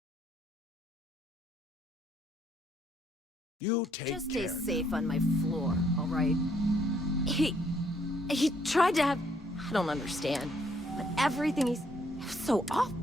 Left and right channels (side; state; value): both; normal; correlation 0.69